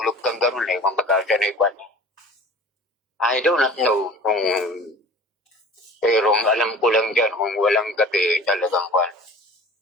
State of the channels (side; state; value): both; normal; correlation 0.43